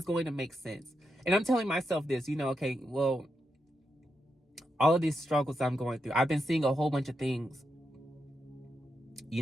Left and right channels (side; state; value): both; normal; correlation 0.85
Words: going to make sense. And I'm telling myself this, you know, okay, well, all of these struggles I'm going through, I've been seeing a whole bunch of things, you